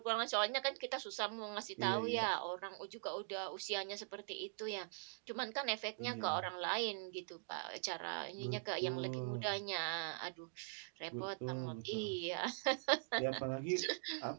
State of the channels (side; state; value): left; silent; digital silence